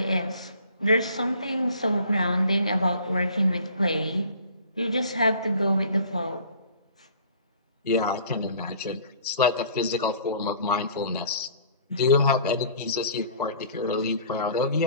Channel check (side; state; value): both; inverted; correlation -0.50